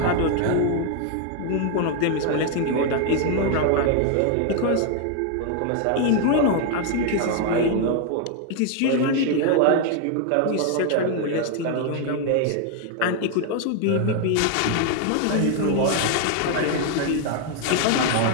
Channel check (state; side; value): different; both; correlation 0.00